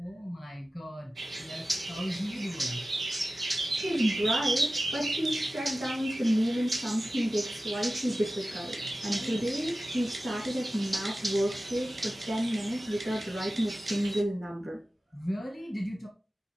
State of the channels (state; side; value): normal; both; correlation 0.95